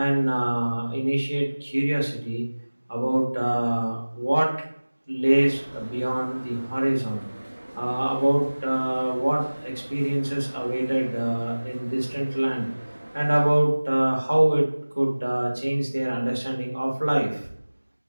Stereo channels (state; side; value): inverted; both; correlation -1.00